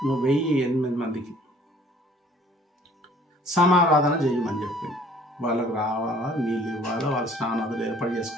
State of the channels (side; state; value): both; normal; correlation 0.55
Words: 1008 మందికి సమారాధన చేయమని చెప్పింది. వాళ్ళకు రావాలా, నీళ్ళు ఇవ్వాలా, వాళ్ళ స్నానాలు ఏర్పాటు